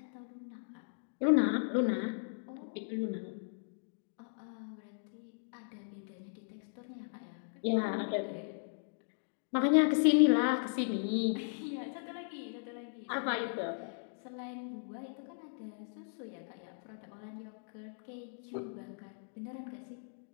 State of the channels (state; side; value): silent; right; digital silence